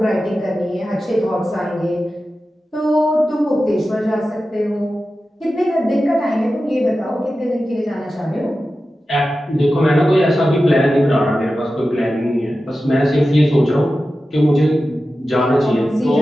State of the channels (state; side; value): normal; both; correlation 0.93